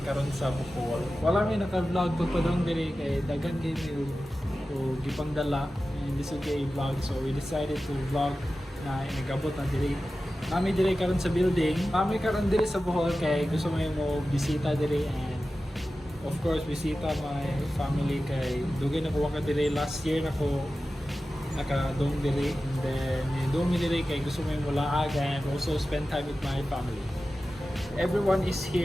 karon sa Bohol. Wala may naka-vlog pagpadong diri kay dagan kay o gipang dala in this day vlog, so we decided to vlog na inagabot na diri. Nami diri karon sa building. Nami karon diri sa Bohol kay gusto mo bisita diri, and of course bisita my family kay dugay na ko ka diri last year na ko naka-dome diri, and then dome diri kay gusto mo yung mulaag and also spend time with my family. Everyone is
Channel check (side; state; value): both; normal; correlation 0.94